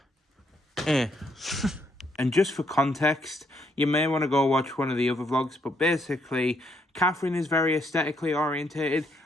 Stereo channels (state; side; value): normal; both; correlation 0.73